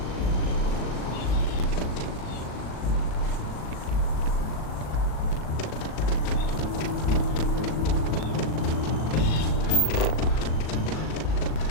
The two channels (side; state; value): right; late; 38 ms